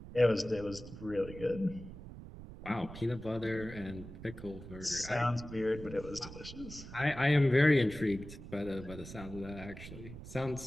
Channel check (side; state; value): right; noise; rumble, 13 dB below the sound